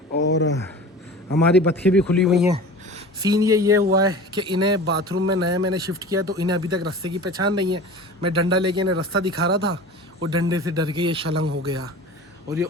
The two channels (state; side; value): normal; both; correlation 0.37